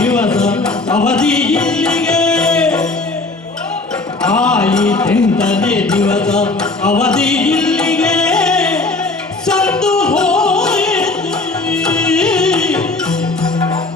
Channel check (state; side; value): quieter; right; 3.3 dB